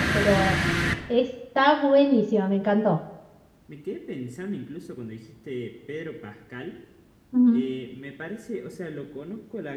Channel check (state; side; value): identical; both; correlation 1.00